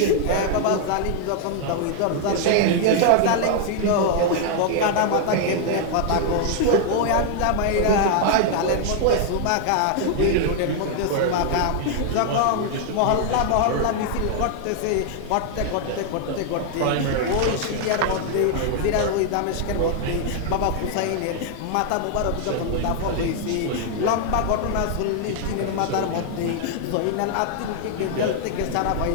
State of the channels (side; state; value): both; different; correlation 0.00